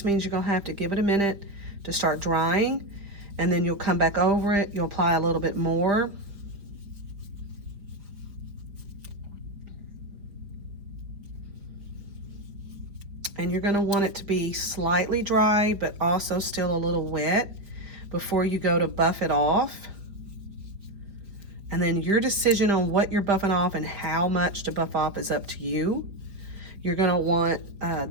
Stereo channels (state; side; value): late; left; 4.6 ms